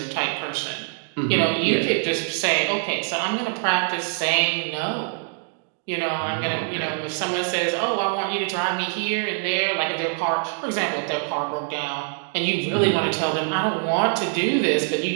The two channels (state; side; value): silent; left; 60 dB below the other